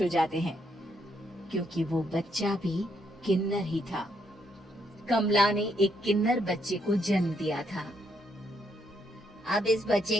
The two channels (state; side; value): normal; both; correlation 0.75